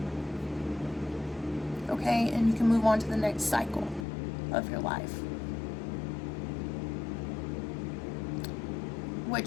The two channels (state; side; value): drops out; right; at 4.0 s